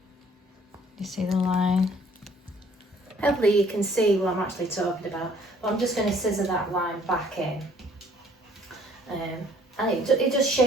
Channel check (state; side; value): normal; both; correlation 0.59